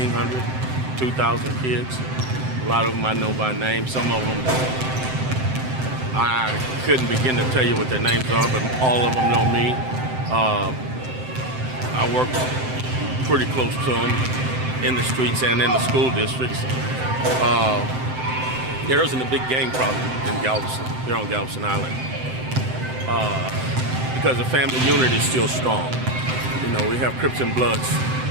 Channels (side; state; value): left; late; 7.8 ms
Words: 2,000 kids. A lot of them I know by name. Some of them I couldn't begin to tell you what their names are, but all of them know me. I work pretty close to them in the streets and in the school districts. There isn't a big gang problem in Galveston, here on Galveston Island, because the family unit is still strong. You know, we have Crips and Bloods